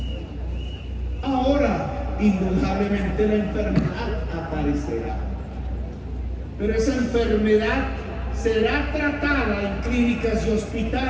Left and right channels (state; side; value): identical; both; correlation 1.00